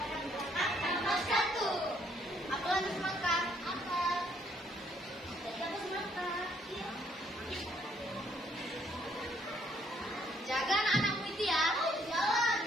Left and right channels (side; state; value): both; normal; correlation 0.68